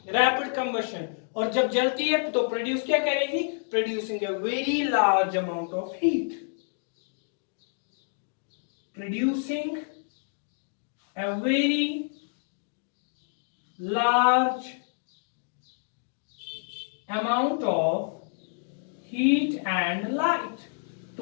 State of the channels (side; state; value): right; silent; digital silence